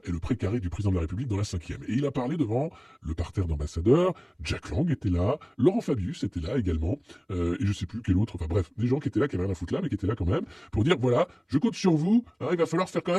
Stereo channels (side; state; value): both; identical; correlation 1.00